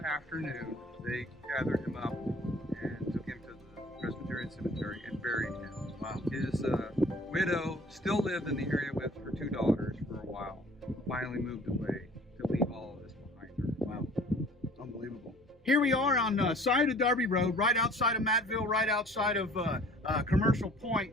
afternoon, they gathered him up and took him to the Presbyterian Cemetery and buried him. Wow. His widow still lived in the area with her two daughters for a while. finally moved away to leave all of this behind her. Wow, unbelievable. Here we are on side of Darby Road, right outside of Mattville, right outside of Commercial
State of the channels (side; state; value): both; normal; correlation 0.50